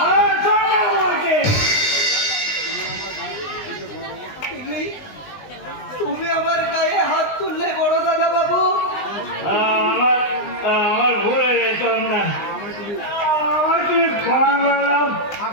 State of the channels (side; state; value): right; late; 20 ms